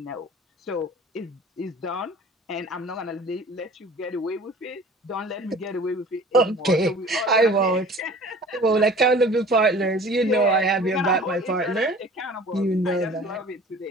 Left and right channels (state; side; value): normal; both; correlation 0.45